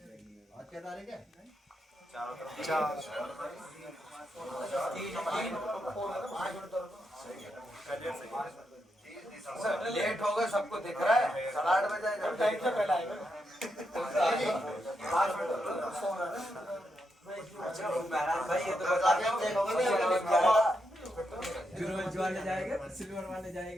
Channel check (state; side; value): normal; both; correlation 0.83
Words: क्या तारीख है? 4 लेट हो गए, सबको दिख रहा है। 8:30 बजे जाएगा, टाइम से पहले आएगा। भाई ये तो बता दिया बिरोज वाले जाएंगे, सिल्वर वाले